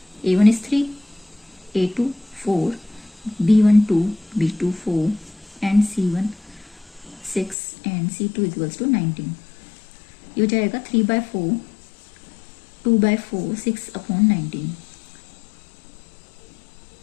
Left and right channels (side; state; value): right; drops out; at 7.6 s